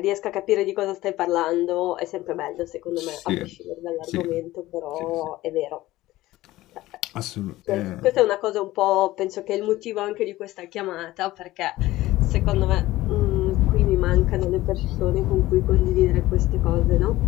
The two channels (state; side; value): quieter; right; 17.0 dB